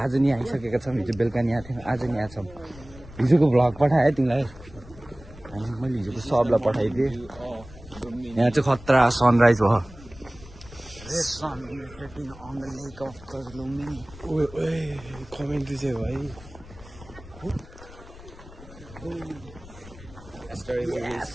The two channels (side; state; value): left; noise; rumble, 19 dB below the sound